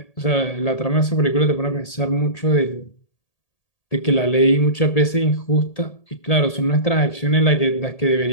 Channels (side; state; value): right; late; 1.8 ms